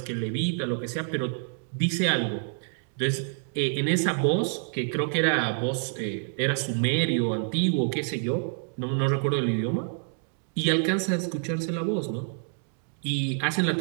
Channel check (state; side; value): silent; left; digital silence